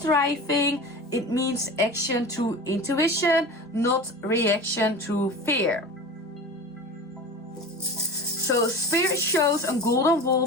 It means action through intuition, not reaction through fear. So Spirit shows a golden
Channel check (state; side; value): normal; both; correlation 0.33